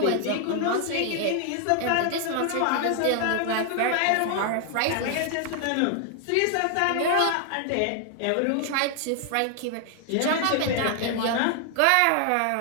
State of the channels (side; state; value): both; different; correlation 0.00